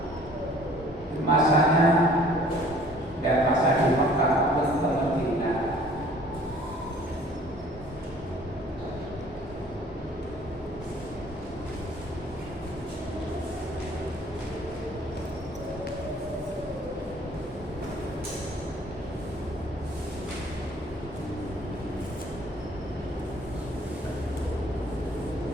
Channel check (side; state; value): both; normal; correlation 0.54